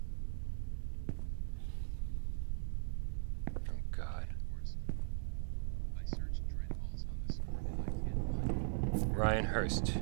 Oh God. I searched Dreadhalls on the sword and I can't find it. Ryan Hurst.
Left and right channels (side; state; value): left; silent; digital silence